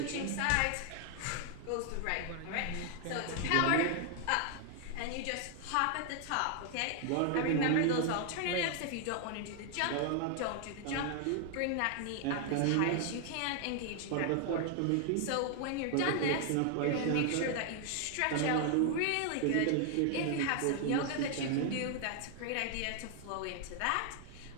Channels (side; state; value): both; different; correlation 0.00